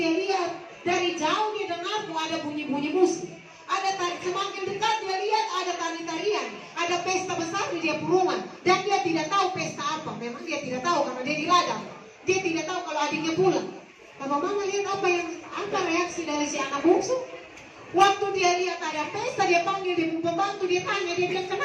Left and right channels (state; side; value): identical; both; correlation 1.00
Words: lihat dari jauh dia dengar ada bunyi-bunyi musik. Ada semakin dekat dia lihat ada tari-tarian, ada pesta besar di dia rumah. Dan dia tidak tahu pesta apa. Memang dia tidak tahu karena dia di ladang. Dia tidak tahu kalau adiknya pulang. Bapak mama lihat apa reaksi dari si anak bungsu. Waktu dia lihat ada pesta, dia panggil dia pembantu, dia tanya, dia bilang